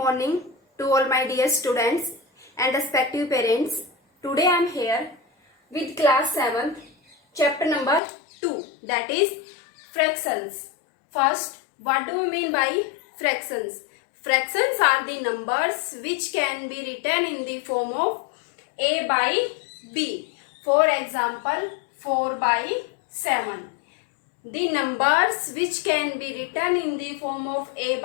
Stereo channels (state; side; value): drops out; right; at 8.0 s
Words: to all my dear students and respective parents. Today I am here with class 7th, chapter number 2, that is fractions. First, what do we mean by fractions? Fractions are the numbers which can be written in the form of A by B. For example, 4 by 7. The numbers which can be written in the form of A